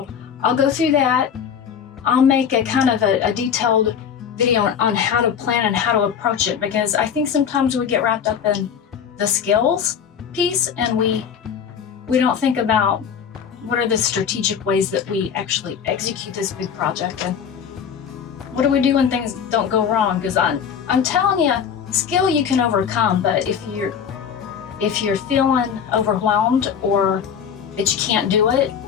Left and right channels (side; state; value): right; quieter; 7.6 dB